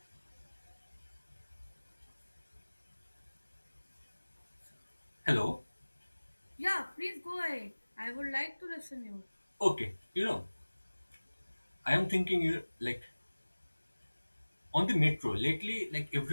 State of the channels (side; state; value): both; inverted; correlation -1.00